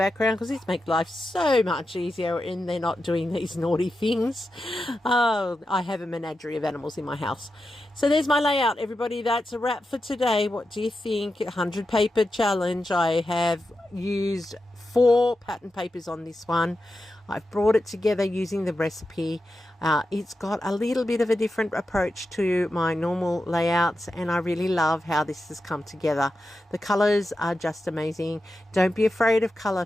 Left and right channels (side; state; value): both; normal; correlation 0.90